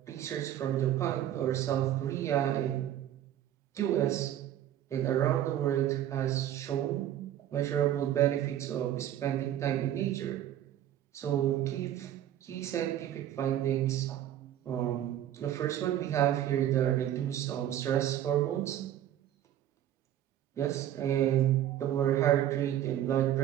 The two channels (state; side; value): quieter; left; 11.7 dB